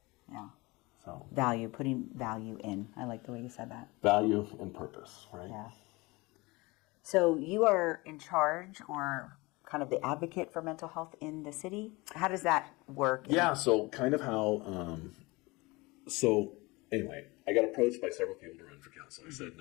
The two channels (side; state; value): right; quieter; 23.6 dB